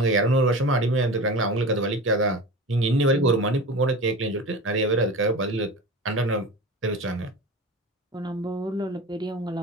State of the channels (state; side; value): normal; both; correlation 0.32